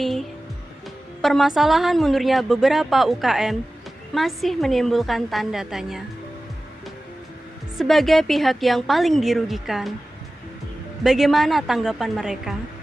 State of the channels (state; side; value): normal; both; correlation 0.96